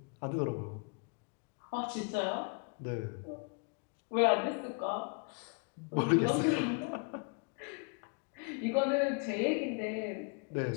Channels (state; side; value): quieter; right; 34.2 dB